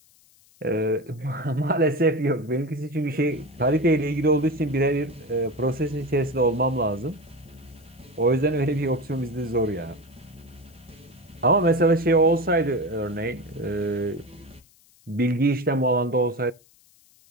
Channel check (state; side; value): noise; left; hiss, 30 dB below the sound